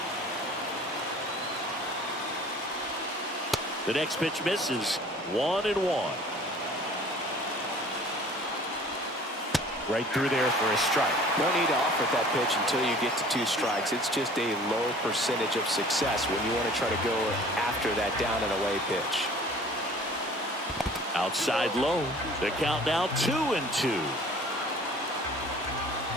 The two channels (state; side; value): normal; both; correlation 0.48